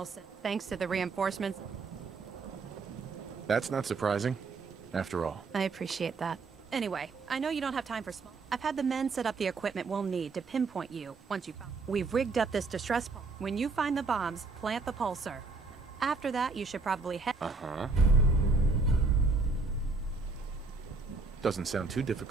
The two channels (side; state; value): left; quieter; 4.0 dB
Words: thanks to the reinforcements. That's not surprising, after all. I appreciate that. Anyway, I know you don't have time for small. I've had the men set up the equipment we'll need to pinpoint you once you... We've rigged up this distress pulse. When you find the bombs, plant the pulsar. After that, you should probably head... Uh-huh. Doesn't sound too